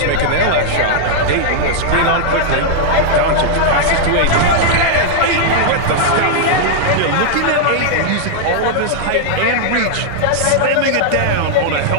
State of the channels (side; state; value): both; different; correlation -0.01